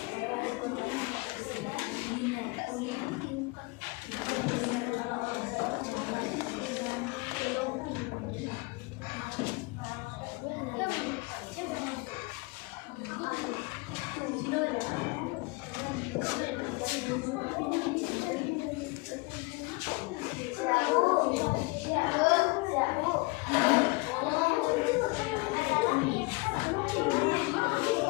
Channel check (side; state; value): right; quieter; 25.9 dB